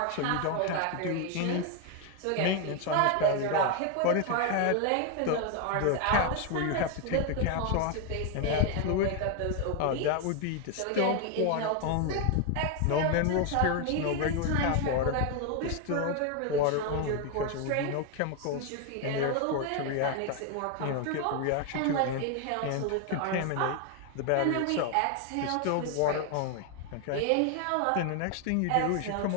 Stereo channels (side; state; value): both; different; correlation 0.01